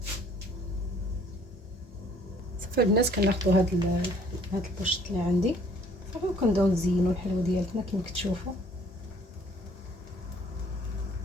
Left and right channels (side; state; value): both; normal; correlation 0.59